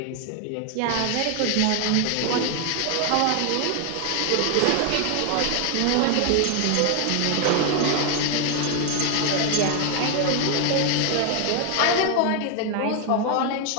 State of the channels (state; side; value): different; both; correlation 0.01